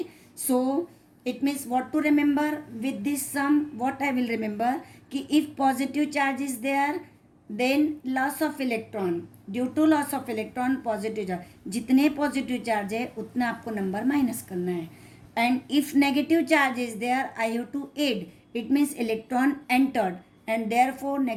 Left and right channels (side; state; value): both; identical; correlation 1.00